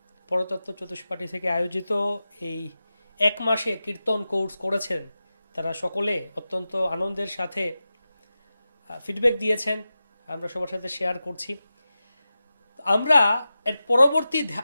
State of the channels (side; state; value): both; inverted; correlation -0.93